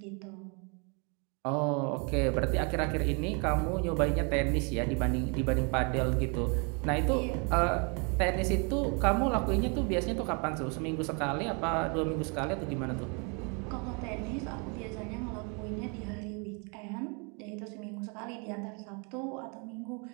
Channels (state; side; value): quieter; left; 34.4 dB